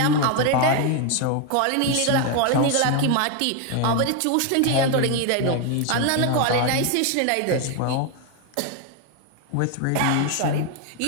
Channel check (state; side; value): different; both; correlation 0.01